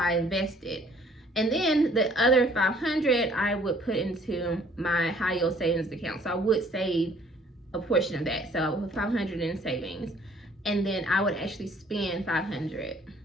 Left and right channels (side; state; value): both; normal; correlation 0.58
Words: invested. And then the other $500 I would put into my high yield savings account. So I would save a portion of that. So I would put $500 in savings, and then I would actually spend $500.